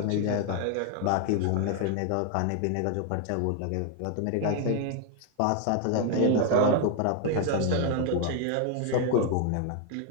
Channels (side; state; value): both; different; correlation 0.00